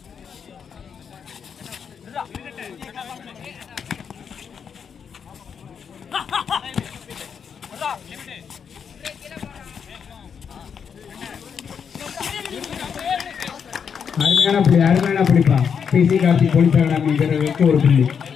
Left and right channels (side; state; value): right; quieter; 7.0 dB